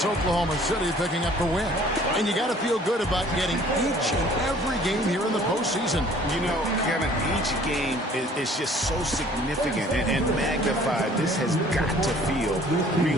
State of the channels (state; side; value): normal; both; correlation 0.54